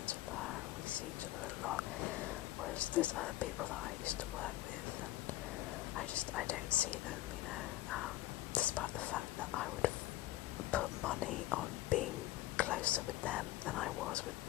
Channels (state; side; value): quieter; right; 15.9 dB